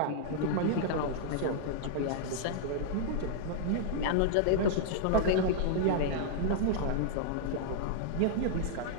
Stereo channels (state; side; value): different; both; correlation -0.01